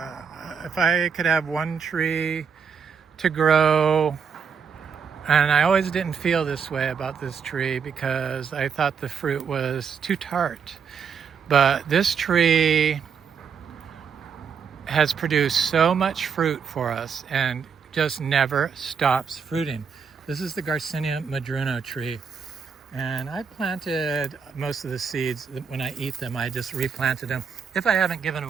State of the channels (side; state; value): left; quieter; 6.5 dB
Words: I could have one tree to grow, and I always didn't feel this way about this tree because I thought the fruit was too tart. But this tree has produced so much fruit for us and just never stops fruiting. This is the Garcinia madruno tree. And I planted most of the seeds. When I eat them, I just replanted them if I haven't given